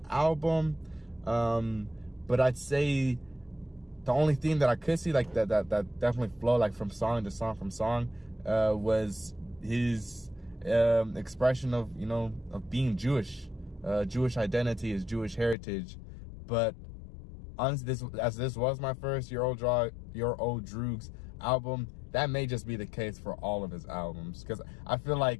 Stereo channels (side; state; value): right; drops out; at 15.6 s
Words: album, but I'd say the only theme that I could see like that definitely flow like from song to song was his expression of being Jewish. Jewish identity, his Jewish heritage. But honestly, this was my first Your Old Droog's album, that may just be the case for all of his albums, because I feel